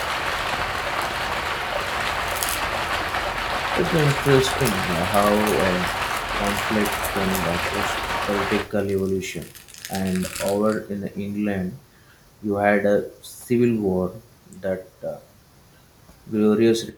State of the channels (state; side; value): identical; both; correlation 1.00